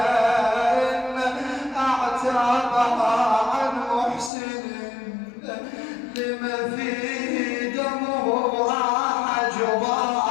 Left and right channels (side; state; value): right; drops out; at 4.3 s